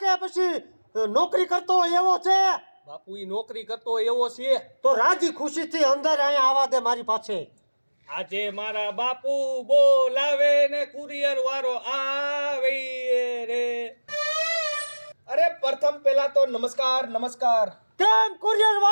પછી નોકરી કરતો હોય એવો છે બાપુ ઈ નોકરી કરતો એવો છે તો રાજી ખુશીથી અંદર અહીંયા આવવા દે મારી પાસે આજે મારા બાપુ બોલાવે ને કુરિયર વાળો આવે રે અરે પ્રથમ પહેલા તો નમસ્કાર નમસ્કાર કેમ કુરિયર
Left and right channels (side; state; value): both; inverted; correlation -1.00